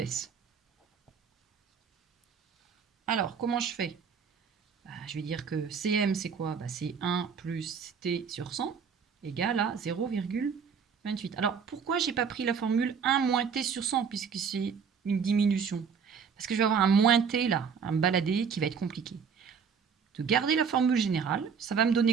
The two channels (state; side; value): quieter; left; 6.4 dB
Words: Alors, comment je fais? Je vais dire que Cm, c'est quoi? C'est 1 plus t sur 100 égale à 0,28. Alors, pourquoi je n'ai pas pris la formule 1 moins t sur 100 puisque c'est une diminution? Parce que je vais avoir un moins t là, un baladé qui va être compliqué. De garder la formule générale, ça va me